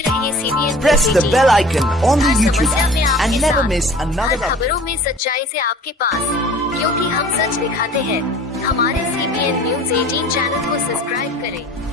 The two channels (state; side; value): normal; both; correlation 0.45